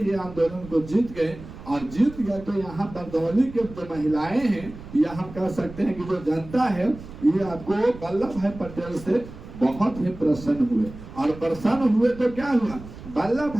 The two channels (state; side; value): noise; right; rumble, 15 dB below the sound